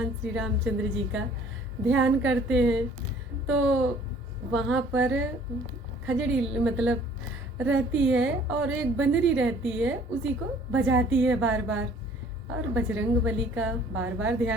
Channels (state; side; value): normal; both; correlation 0.56